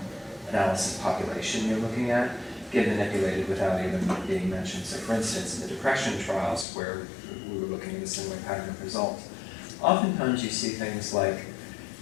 analysis population you're looking at, get manipulated without even being mentioned. So for instance, in the depression trials where we were looking at a similar pattern of results, oftentimes you see things like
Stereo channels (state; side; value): drops out; right; at 6.7 s